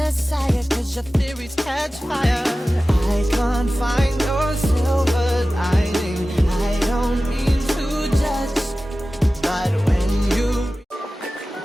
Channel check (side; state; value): both; normal; correlation 0.96